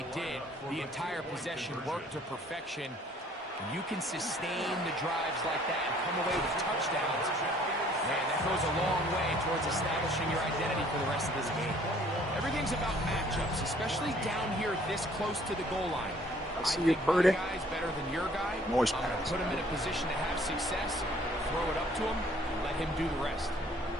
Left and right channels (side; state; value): both; normal; correlation 0.58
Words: did, the entire possession worked to perfection. And you can sustain the drives like that and come away with touchdowns. Man, that goes a long way towards establishing your identity for the rest of this game. Everything's about matchups, especially down here this close to the goal line. I see you, Purdy. My guy's better than your guy. Noise I'm going to pass. put him in a position to have success, throw it up to him, and let him do the rest.